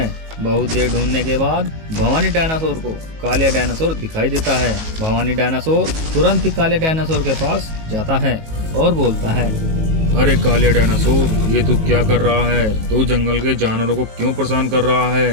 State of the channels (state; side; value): late; left; 19 ms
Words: बहुत देर ढूंढने के बाद भवानी डायनासोर को कालिया डायनासोर दिखाई देता है। भवानी डायनासोर तुरंत ही कालिया डायनासोर के पास जाता है और बोलता है, अरे कालिया डायनासोर, ये तू क्या कर रहा है? तू जंगल के जानवरों को क्यों परेशान कर रहा